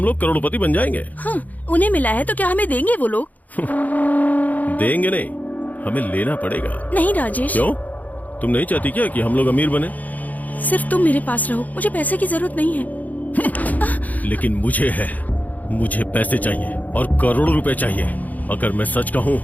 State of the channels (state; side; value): late; right; 0.079 ms